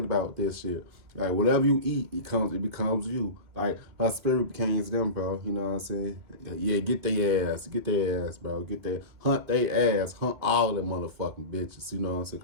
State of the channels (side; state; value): left; late; 2.9 ms